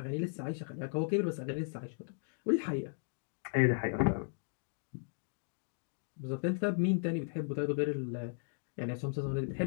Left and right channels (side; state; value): right; silent; digital silence